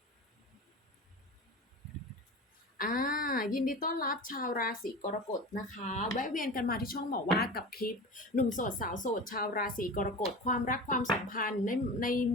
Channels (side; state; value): both; normal; correlation 0.32